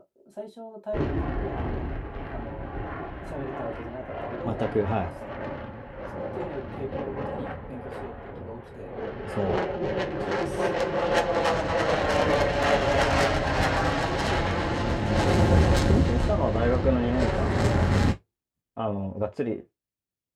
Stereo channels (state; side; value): identical; both; correlation 1.00